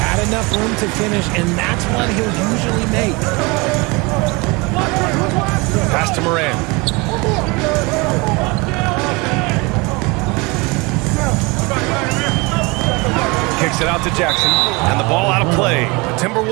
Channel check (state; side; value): quieter; left; 26.5 dB